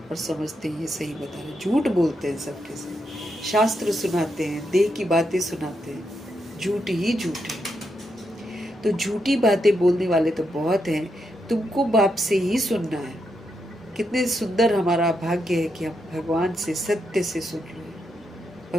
और समझते हैं ये सही बता रहे, झूठ बोलते हैं सबके साथ, शास्त्र सुनाते हैं, देह की बातें सुनाते हैं, झूठ ही झूठ है। तो झूठी बातें बोलने वाले तो बहुत हैं, तुमको बाप से ही सुनना है। कितने सुंदर हमारा भाग्य है कि हम भगवान से सत्य से सुन रहे हैं।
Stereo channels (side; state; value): both; normal; correlation 0.82